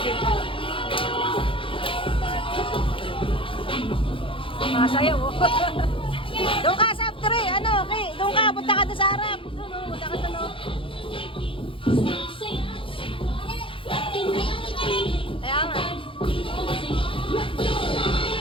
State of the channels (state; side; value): late; right; 0.25 ms